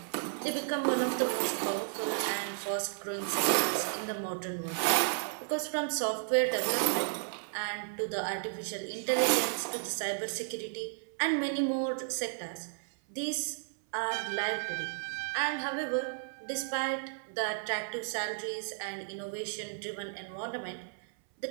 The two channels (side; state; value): left; silent; 56 dB below the other